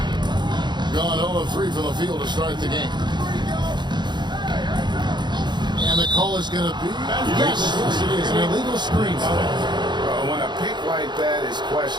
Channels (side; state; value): left; late; 0.21 ms